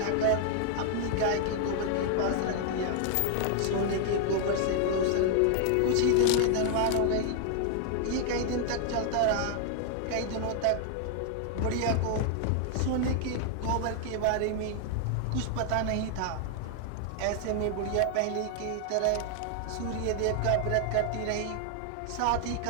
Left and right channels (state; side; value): different; both; correlation 0.00